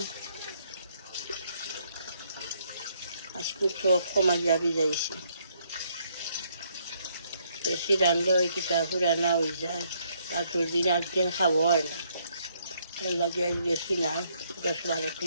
আজকে সব কমাইয়া ভিজাইছি। বেশি রান্ধলে ওই কিতা পুরানা হয়ে যায়, পাঁচুর দিন একদিন খাবো হয় না। এর লাগে আজ বেশি নাই, 10-12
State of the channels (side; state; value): both; inverted; correlation -0.70